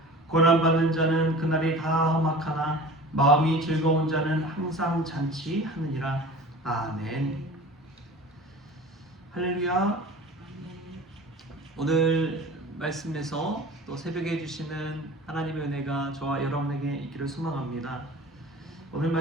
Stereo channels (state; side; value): normal; both; correlation 0.39